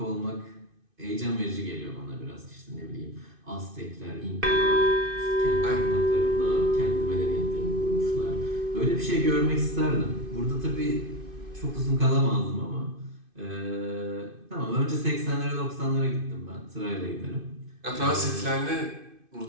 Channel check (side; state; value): left; late; 2.5 ms